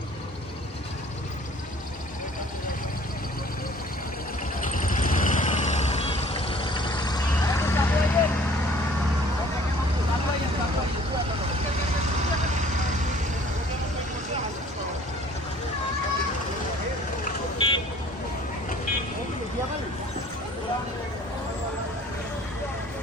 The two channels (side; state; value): both; normal; correlation 0.53